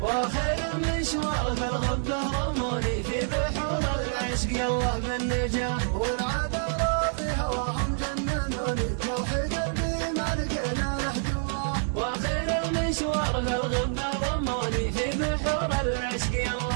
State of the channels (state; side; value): silent; left; 60 dB below the other